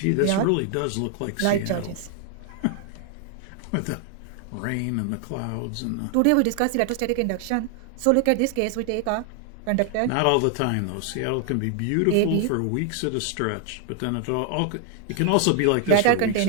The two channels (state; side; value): different; both; correlation 0.00